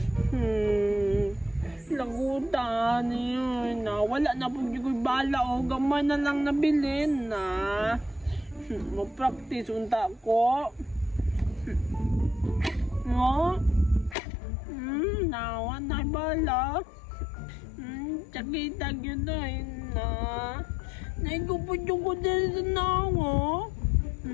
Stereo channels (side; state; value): right; drops out; at 14.2 s